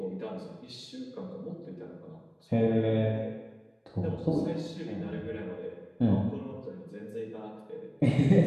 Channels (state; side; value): identical; both; correlation 1.00